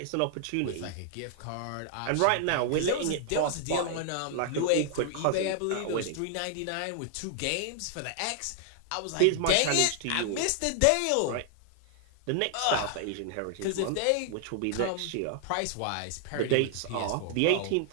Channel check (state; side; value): different; both; correlation 0.00